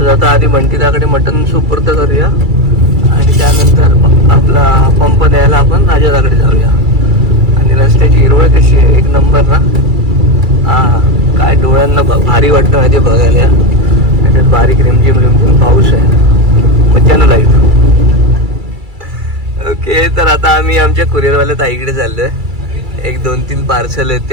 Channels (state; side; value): late; left; 2.3 ms